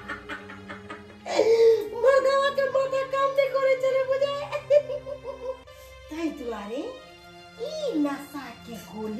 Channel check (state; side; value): identical; both; correlation 1.00